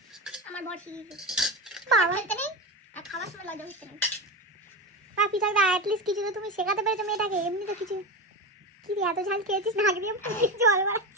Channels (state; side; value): normal; both; correlation 0.20